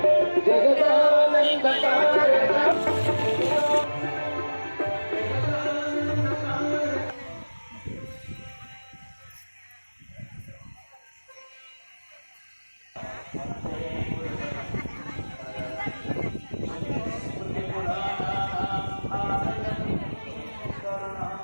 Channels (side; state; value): both; inverted; correlation -1.00